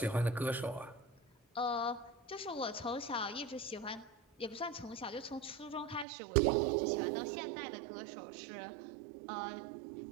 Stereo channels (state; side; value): drops out; left; at 6.1 s